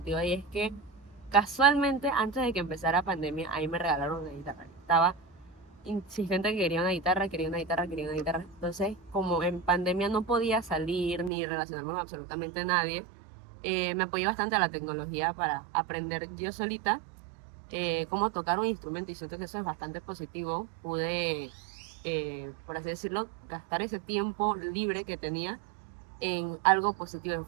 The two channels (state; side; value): drops out; left; at 11.3 s